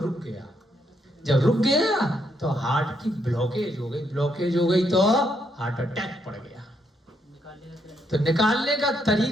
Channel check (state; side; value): normal; both; correlation 0.76